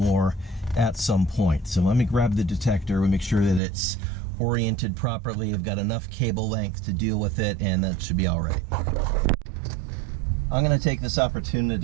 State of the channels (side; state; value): left; drops out; at 3.6 s